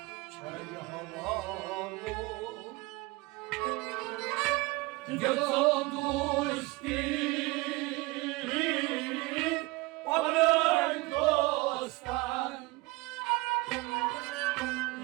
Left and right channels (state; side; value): quieter; left; 22.6 dB